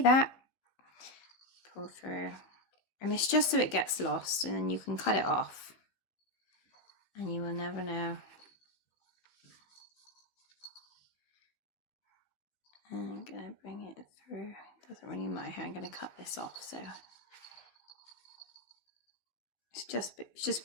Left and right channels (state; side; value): late; right; 15 ms